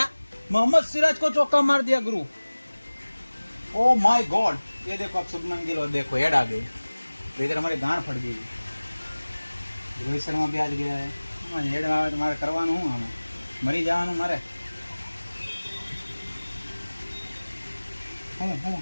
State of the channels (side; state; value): both; inverted; correlation -1.00